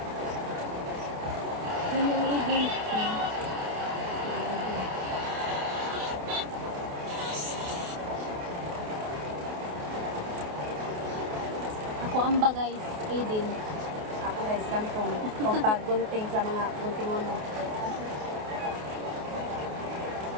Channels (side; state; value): left; late; 28 ms